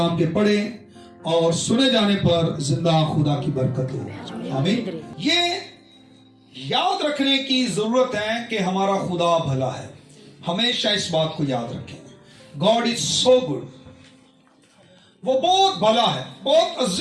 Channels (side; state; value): both; identical; correlation 1.00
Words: के पढ़े और सुने जाने पर जिंदा खुदा की बरकत हो। आमीन। ये याद रखने की जरूरत है कि हमारा खुदा भला है। हमेशा इस बात को याद रखें, गॉड इज सो गुड। वो बहुत भला है, बहुत